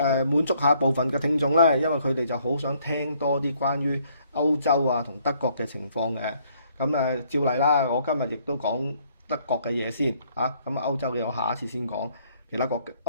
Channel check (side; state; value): both; inverted; correlation -0.66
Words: 滿足下部分嘅聽眾呢，因為佢哋就好想聽多啲關於歐洲啊同德國嘅情況嘅。咁照例啦，我今日亦都講德國嘅嘢先嚇。咁歐洲嘅我下一次先講，